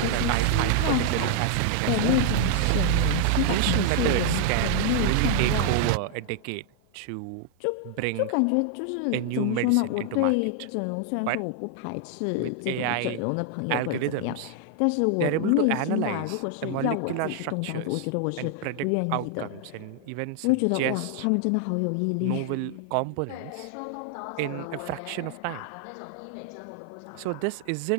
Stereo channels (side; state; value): both; different; correlation 0.00